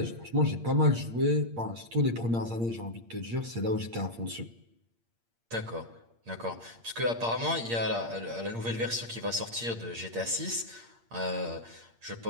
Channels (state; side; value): late; left; 8.7 ms